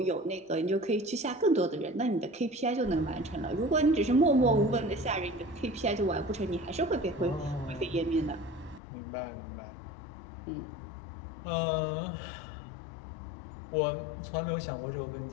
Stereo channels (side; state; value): right; drops out; at 8.8 s